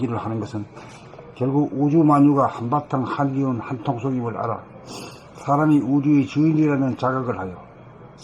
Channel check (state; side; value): identical; both; correlation 1.00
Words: 하는 것은 결국 우주만유가 한바탕 한기운 한통속임을 알아 사람이 우주의 주인이라는 자각을 하여